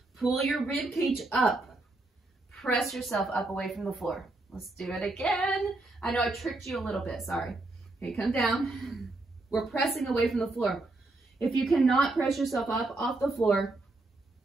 Pull your rib cage up. Press yourself up away from the floor. Let's do it again. I know I tricked you a little bit, sorry. Okay, come down. We're pressing away from the floor. If you cannot press yourself up off the floor,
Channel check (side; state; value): left; quieter; 3.0 dB